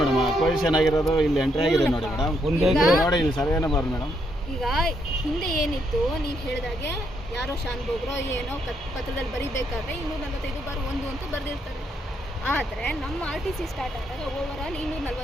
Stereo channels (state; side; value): normal; both; correlation 0.76